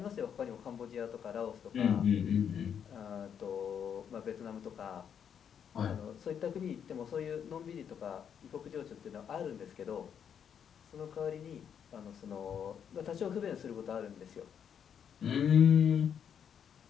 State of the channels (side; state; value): right; quieter; 8.1 dB